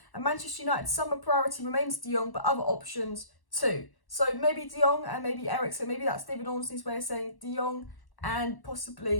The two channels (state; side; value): late; right; 1.1 ms